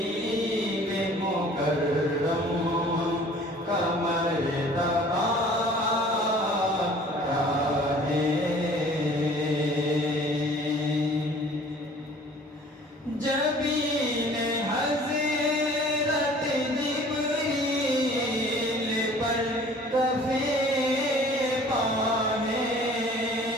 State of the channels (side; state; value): both; normal; correlation 0.50